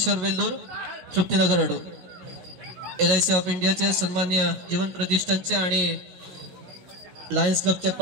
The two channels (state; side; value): late; left; 16 ms